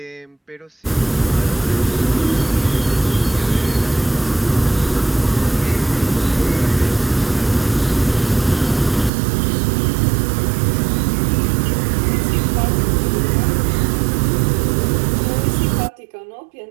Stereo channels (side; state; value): left; drops out; at 9.1 s